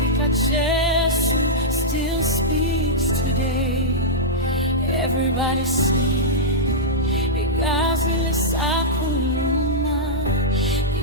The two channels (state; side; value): normal; both; correlation -0.10